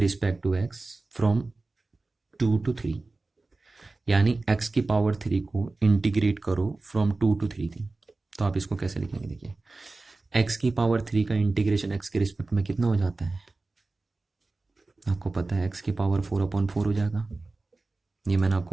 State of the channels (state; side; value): quieter; left; 3.4 dB